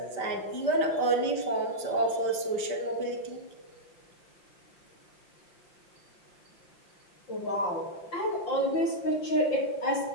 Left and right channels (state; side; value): late; right; 5.7 ms